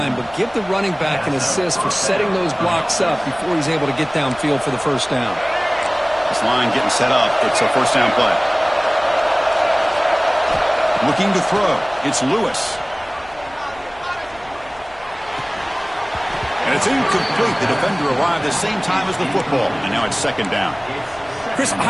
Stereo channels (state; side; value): noise; left; rumble, 24 dB below the sound